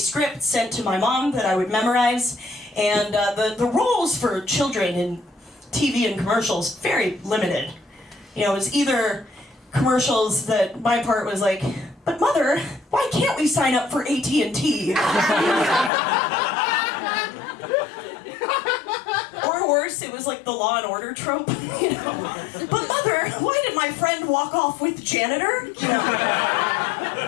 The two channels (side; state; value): right; drops out; at 15.9 s